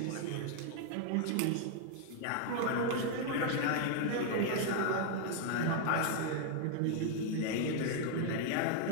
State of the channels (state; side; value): different; both; correlation 0.00